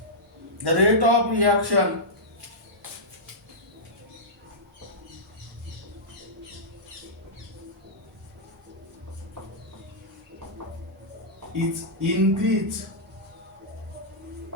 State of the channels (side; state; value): both; normal; correlation -0.12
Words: the rate of reaction is increased